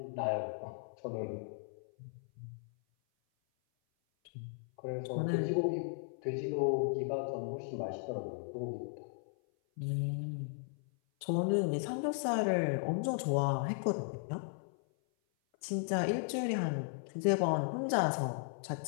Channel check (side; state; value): right; silent; 54 dB below the other